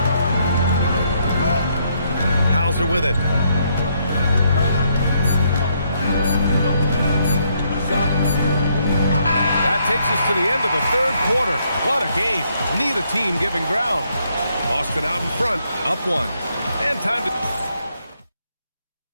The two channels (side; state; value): both; inverted; correlation -0.73